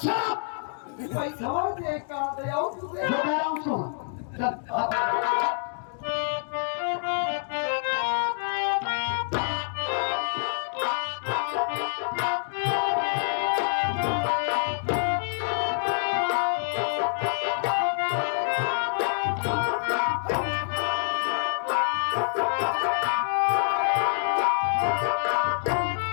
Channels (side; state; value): right; silent; digital silence